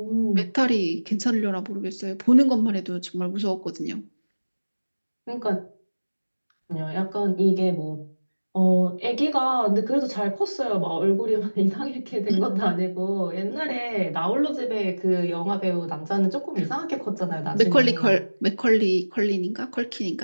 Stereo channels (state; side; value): inverted; both; correlation -1.00